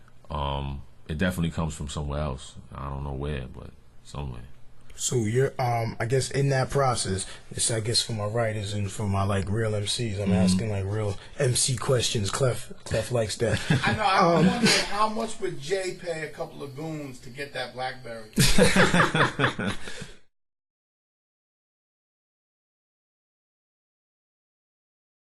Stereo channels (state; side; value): identical; both; correlation 1.00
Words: it definitely comes from somewhere else. I don't know where, but somewhere. So you're, I guess in that process, it's, I guess, for my writers and for my like real MCs, I'm asking like real MC questions. Clef likes that. I know. I wonder how much would Jay pay a couple of goons to get that BlackBerry?